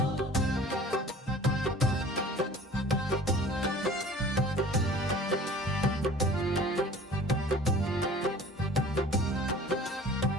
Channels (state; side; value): normal; both; correlation 0.46